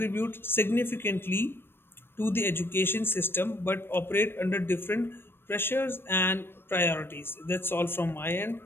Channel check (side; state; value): right; late; 0.11 ms